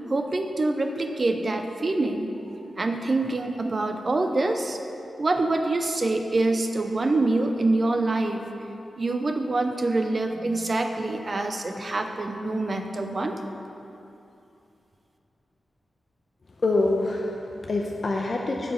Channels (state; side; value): normal; both; correlation 0.93